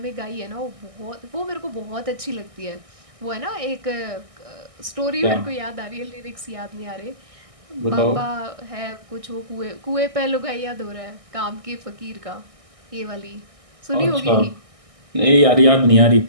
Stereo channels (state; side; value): late; left; 1.6 ms